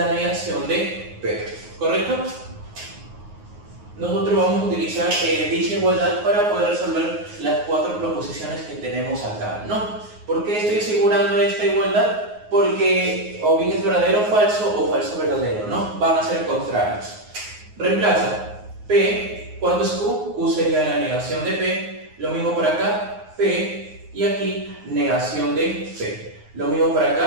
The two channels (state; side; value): late; left; 9.5 ms